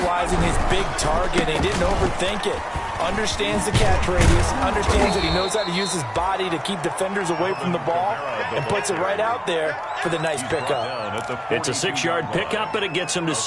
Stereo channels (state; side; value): identical; both; correlation 1.00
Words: his big target. He didn't overthink it. Understands the catch radius. Understands that he knows how to use his body to keep defenders away from the ball. And puts it right out there for the nice pickup. It's a 6-yard pickup, but it gets him to